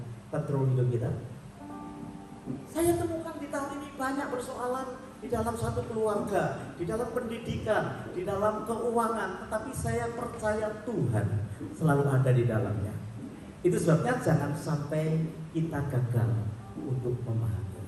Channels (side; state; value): both; identical; correlation 1.00